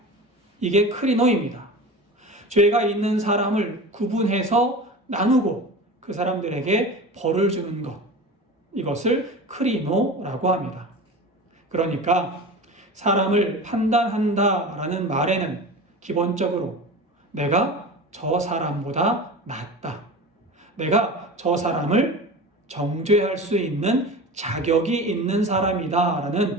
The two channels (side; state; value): both; normal; correlation 0.32